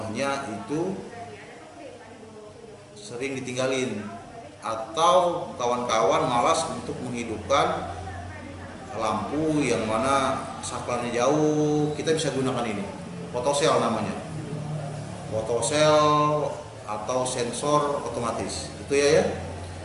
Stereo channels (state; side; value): identical; both; correlation 1.00